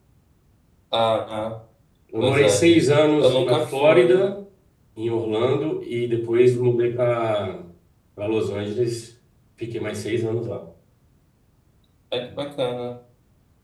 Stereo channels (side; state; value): both; identical; correlation 1.00